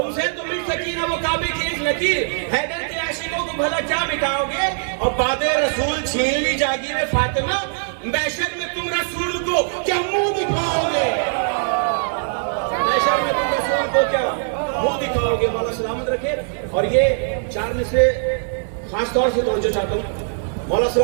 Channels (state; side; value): silent; left; digital silence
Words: तो मिट सकी ना वो काबे की एक लकीर, हैदर के आशिकों को भला क्या मिटाओगे। और बादे रसूल छीन ली जागीर फातिमा, महशर में तुम रसूल को क्या मुंह दिखाओगे। महशर में तुम रसूल को क्या मुंह दिखाओगे। मौला सलामत रखे। और ये 4 में से खास तौर से तवज्जो चाहता हूँ, मौला